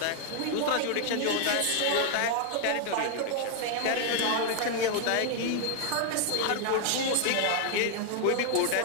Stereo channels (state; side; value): different; both; correlation 0.00